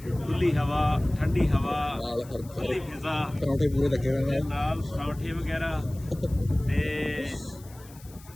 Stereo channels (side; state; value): left; noise; hiss, 23 dB below the sound